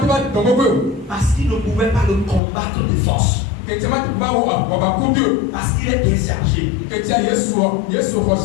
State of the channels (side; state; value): right; drops out; at 2.4 s